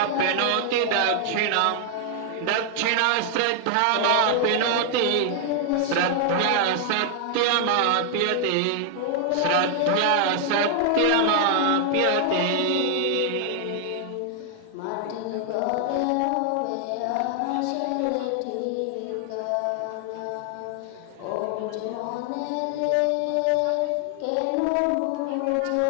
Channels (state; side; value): different; both; correlation 0.00